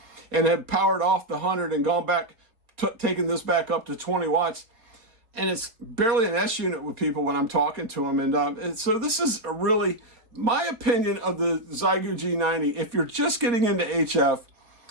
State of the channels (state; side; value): late; left; 4.2 ms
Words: and had powered off the 100 and gone back, taking this back up to 20 watts. And it's barely an S unit with people when I'm talking to them. And so this is really my opinion of the Xiegu G90. If you're just getting into HF